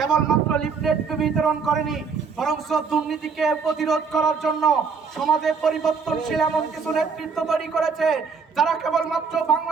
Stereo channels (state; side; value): quieter; left; 5.5 dB